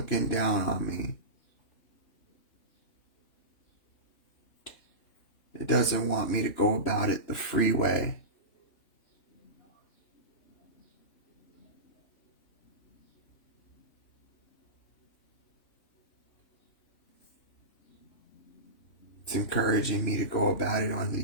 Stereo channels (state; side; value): late; right; 3.2 ms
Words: down on me. It doesn't want me to go about it the free way. It's encouraging me to go about it on the